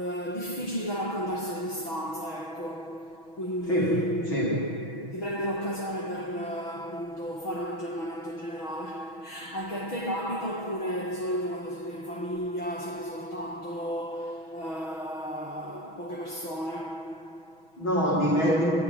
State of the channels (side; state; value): right; late; 6.2 ms